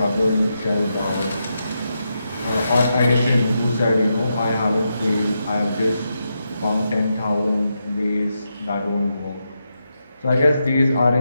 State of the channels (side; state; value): both; inverted; correlation -0.85